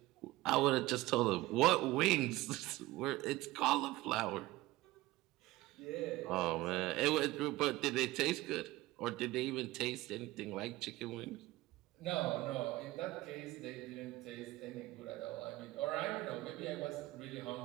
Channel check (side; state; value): left; quieter; 18.5 dB